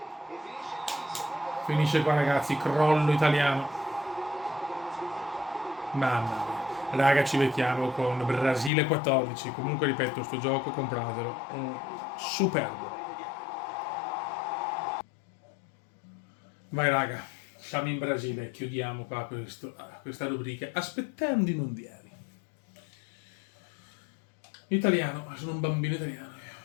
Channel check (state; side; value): drops out; right; at 8.7 s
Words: e finisce qui. Finisce qua ragazzi, crollo italiano. Mamma mia. Raga, ci becchiamo con Brasile 14. Comunque ripeto, sto gioco compratelo. Superbo. Vai raga, siamo in Brasile, chiudiamo qua questa rubrica aspettando i mondiali. Italiano, sono un bambino italiano.